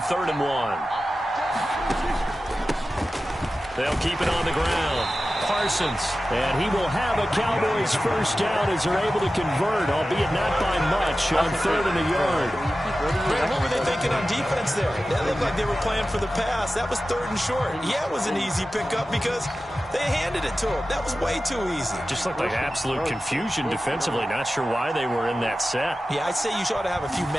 3rd and 1. They'll keep it on the ground. Parsons. And he will have a Cowboys first down as they're able to convert, albeit not by much, on 3rd and a yard. Brad, what were they thinking on defense there? That looked like they were playing for the pass. That was 3rd and short. Yeah, it was an easy pickup because they handed it to him. That was way too easy. Just looked like absolute confusion defensively. Not sure why they were in that set. Yeah, I'd say you ought to have a few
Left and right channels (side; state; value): both; normal; correlation 0.94